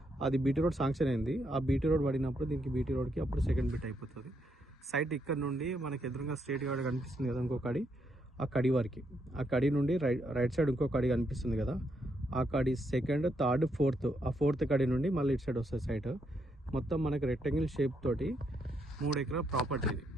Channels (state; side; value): normal; both; correlation 0.77